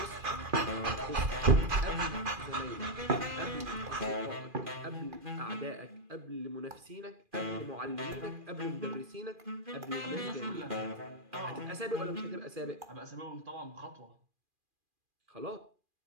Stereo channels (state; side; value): late; left; 2.4 ms